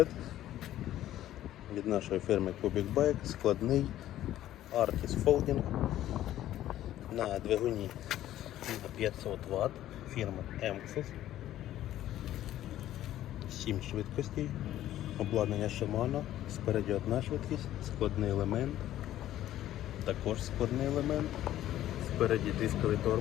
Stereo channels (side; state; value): right; quieter; 13.1 dB